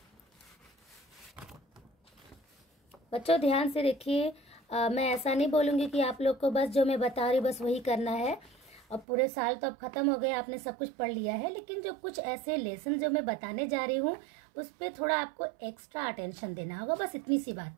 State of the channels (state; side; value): drops out; left; at 9.1 s